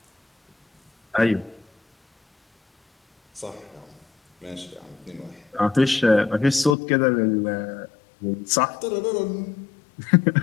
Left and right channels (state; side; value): drops out; right; at 6.8 s